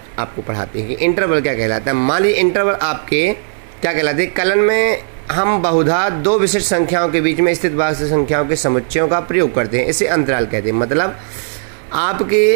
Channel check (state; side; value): silent; left; 69 dB below the other